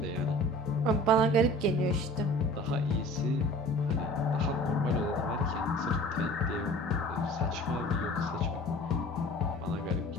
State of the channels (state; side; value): normal; both; correlation 0.44